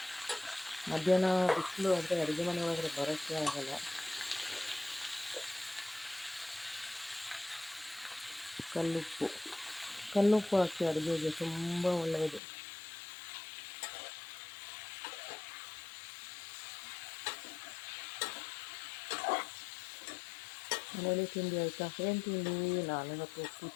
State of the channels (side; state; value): right; drops out; at 12.4 s